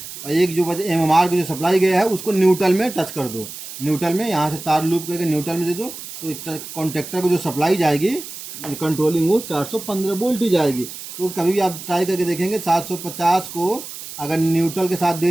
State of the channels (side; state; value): right; noise; hiss, 12 dB below the sound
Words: और एक जो वजह MMR की जो सप्लाई गया है उसको न्यूट्रल में टच कर दो। न्यूट्रल में यहाँ से तार लूप करके न्यूट्रल में दे दो, तो कॉन्ट्रैक्टर को जो सप्लाई जाएगी कंट्रोलिंग वो 415 वोल्ट ही जाएगी। तो कभी भी आप ट्राई करके देखेंगे 750 को अगर न्यूट्रल के साथ